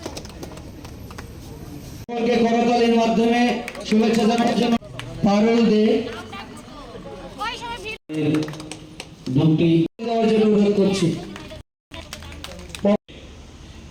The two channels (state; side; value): identical; both; correlation 1.00